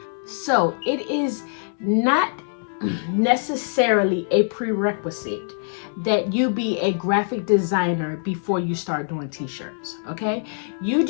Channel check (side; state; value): right; silent; digital silence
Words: So it is not necessarily a prerequisite that you be a graphic designer before you start doing t-shirts. Okay, you